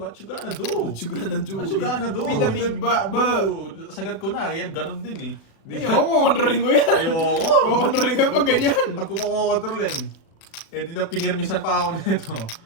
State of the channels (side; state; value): right; late; 36 ms